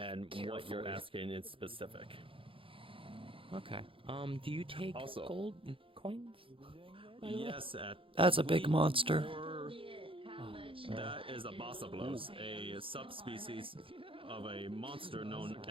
what you're asking in specific. Okay. Do you take Also- gold coins? by the way? Yes, That's a big monster. That is a Bossablos, a subspecies of a monster known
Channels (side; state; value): left; late; 0.26 ms